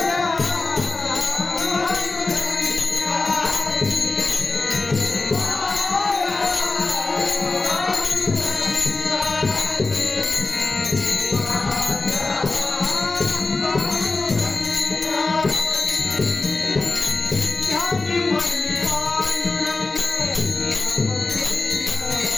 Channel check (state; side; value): quieter; right; 3.6 dB